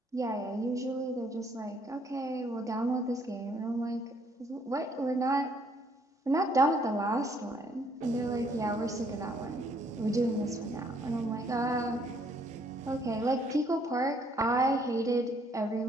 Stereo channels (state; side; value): normal; both; correlation 0.66